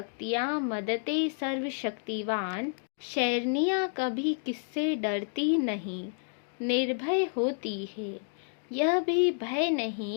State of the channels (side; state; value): right; silent; 58 dB below the other